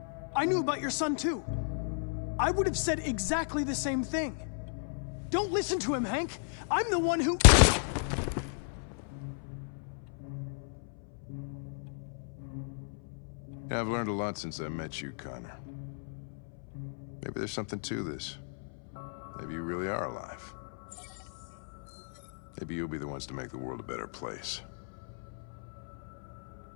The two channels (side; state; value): right; silent; 55 dB below the other